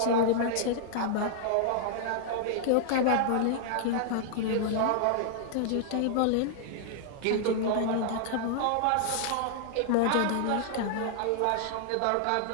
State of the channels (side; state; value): both; different; correlation -0.01